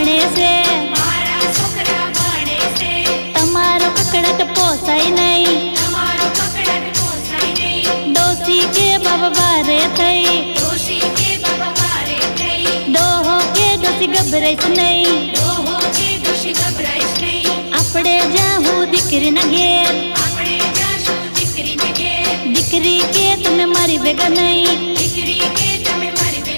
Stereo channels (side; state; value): both; inverted; correlation -1.00